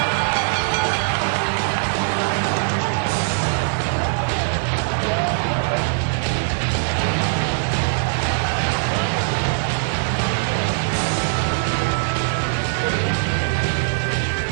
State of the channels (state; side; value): silent; left; digital silence